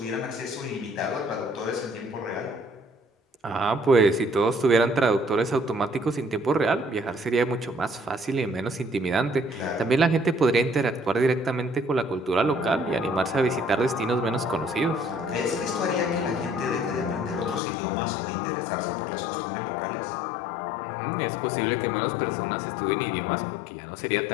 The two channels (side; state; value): right; drops out; at 17.6 s